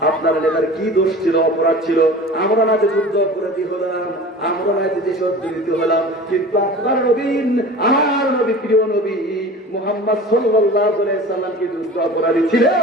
আপনার নেতার কি দোষ ছিল, অপরাধ ছিল? আমরা না যে যুদ্ধ অপরাধী হলাম, আমরা না যে দেশ অর্জিত হলাম, কিন্তু আপনার নবী, আমার নবী, প্রিয় নবী মুহাম্মদ সাল্লাল্লাহু আলাইহি সাল্লাম কি যুদ্ধ অপরাধী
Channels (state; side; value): normal; both; correlation 0.38